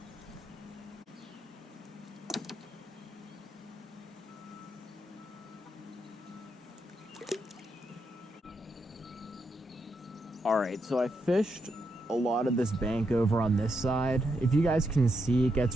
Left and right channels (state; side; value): normal; both; correlation 0.81